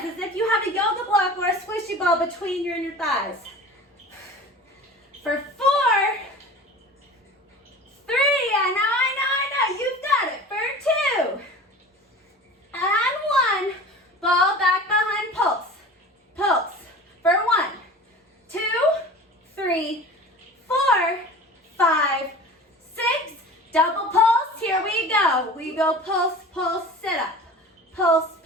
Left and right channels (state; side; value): normal; both; correlation 0.39